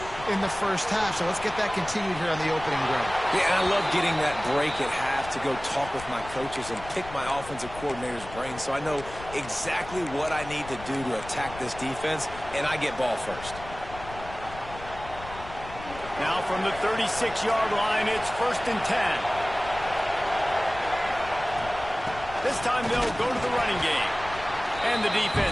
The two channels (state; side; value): noise; left; rumble, 14 dB below the sound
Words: in the first half, so let's get that continued here on the opening drive. Yeah, and I love getting that break at half to go talk with my coaches and pick my offensive coordinator's brain so I know exactly what I need to do to attack this defense, and I get ball first. Now from the 36-yard line, it's 1st and 10. This time they'll go to the running game. And the